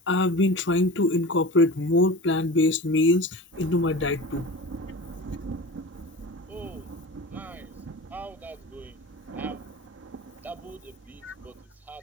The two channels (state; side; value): normal; both; correlation 0.33